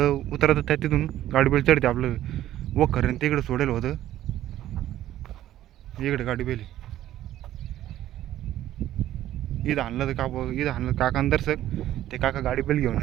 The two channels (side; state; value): left; quieter; 13.1 dB